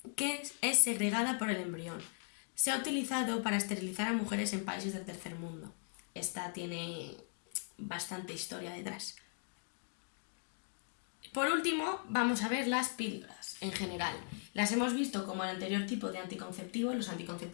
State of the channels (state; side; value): silent; right; 52 dB below the other